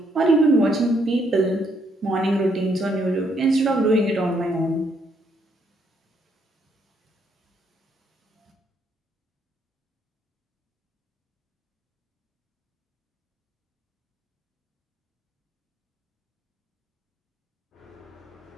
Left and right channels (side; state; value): both; normal; correlation 0.72